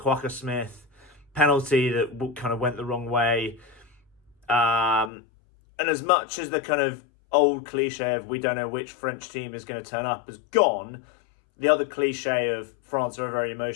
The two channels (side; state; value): right; drops out; at 5.1 s